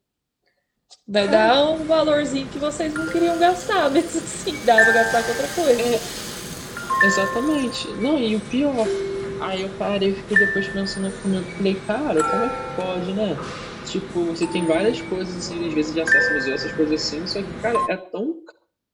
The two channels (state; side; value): identical; both; correlation 1.00